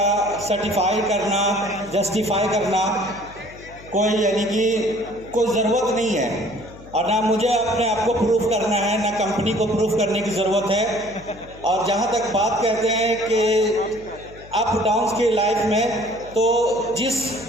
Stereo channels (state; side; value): noise; left; hum, 20 dB below the sound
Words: सर्टिफाई करना, जस्टिफाई करना कोई यानी कि कोई ज़रूरत नहीं है, और ना मुझे अपने आप को प्रूफ करना है, ना कंपनी को प्रूफ करने की ज़रूरत है। और जहाँ तक बात करते हैं कि अप डाउन्स की लाइफ में, तो जिस